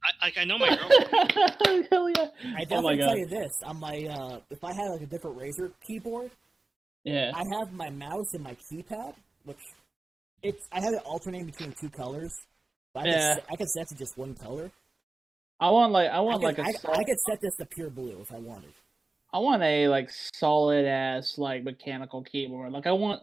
Hell yeah. I definitely tell you this. On my if I had a different Razer keyboard, yeah, I have my mouse and my keypad, which I have it alternating between two colors. But I could set to just one color. I could set this to pure blue if I wanted. I want a solid ass mechanical keyboard. I want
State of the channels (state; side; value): quieter; left; 3.2 dB